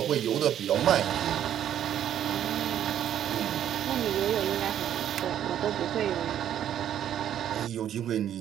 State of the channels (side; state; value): left; quieter; 10.5 dB